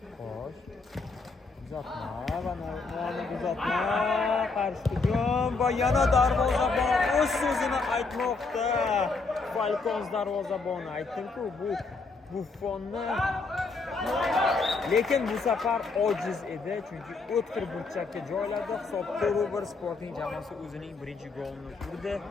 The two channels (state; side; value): quieter; right; 4.1 dB